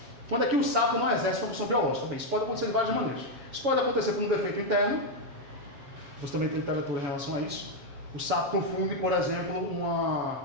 Quando é que o sapo não exerce uma função biológica? Bem, isso pode acontecer de várias maneiras. Isso pode acontecer por um defeito interno, você também tem literatura em relação a isso. O sapo confunde, por exemplo,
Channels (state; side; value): late; left; 7.2 ms